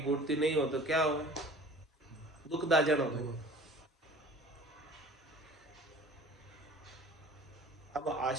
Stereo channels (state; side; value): normal; both; correlation 0.45